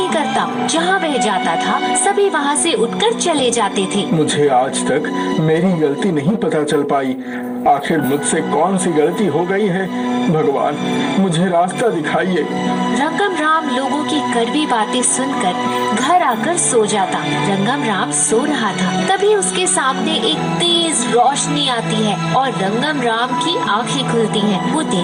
करता। जहाँ वह जाता था सभी वहाँ से उठकर चले जाते थे। मुझे आज तक मेरी गलती नहीं पता चल पाई। आखिर मुझसे कौन सी गलती हो गई है? भगवान, मुझे रास्ता दिखाइए। रंगम राम लोगों की कड़वी बातें सुनकर घर आकर सो जाता। रंगम राम सो रहा था, तभी उसके सामने एक तेज रोशनी आती है और रंगम राम की आंखें खुलती हैं। वो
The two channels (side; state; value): both; identical; correlation 1.00